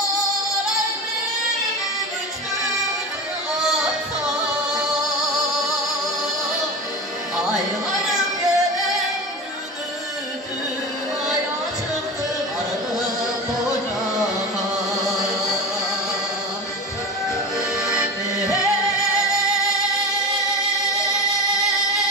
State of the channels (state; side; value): normal; both; correlation 0.28